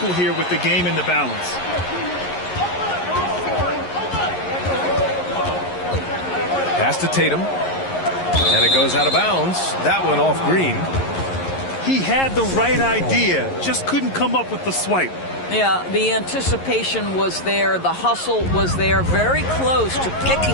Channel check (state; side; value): late; right; 11 ms